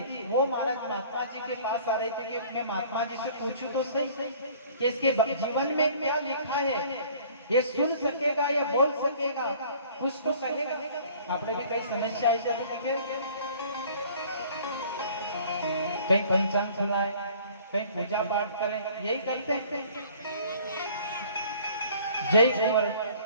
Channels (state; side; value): inverted; both; correlation -0.51